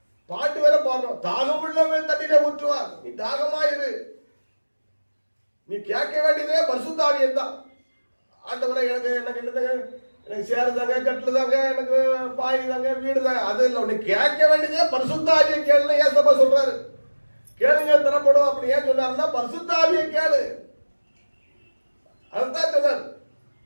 பாட்டு வேற பாடுறோம், தாகம் உள்ளவன் தண்ணீரை ஊற்றுவார். நீ தாகமாயிரு. நீ கேட்க வேண்டியதே பரிசுத்த ஆவியை தான். ஆண்டவரை எனக்கு என்னதாங்க, எனக்கு சேருதாங்க, கட்டுதாங்க, எனக்கு பாய் தாங்க, வீடு தாங்க, அது இல்லை. உன்னை கேட்க வேண்டியதே பரிசுத்த ஆவியை கேளுன்னு ஏசப்பா சொல்றாரு. கேளுங்க தரப்படும். அப்படி ஏன் சொன்னாருன்னா பரிசுத்த ஆவியை கேளு. அதுதான் சொன்னார்.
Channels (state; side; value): inverted; both; correlation -1.00